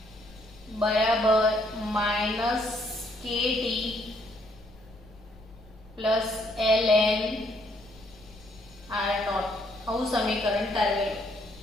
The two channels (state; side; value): noise; left; rumble, 23 dB below the sound